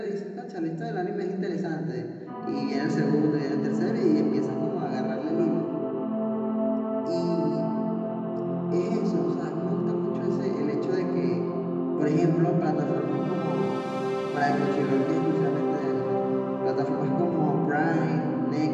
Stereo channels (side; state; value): both; identical; correlation 1.00